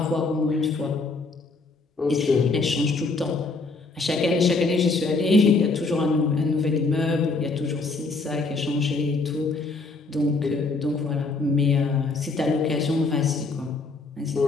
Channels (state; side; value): quieter; right; 3.8 dB